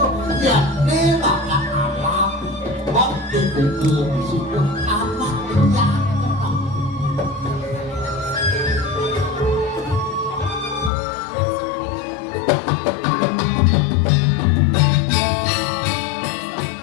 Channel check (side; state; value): right; drops out; at 10.9 s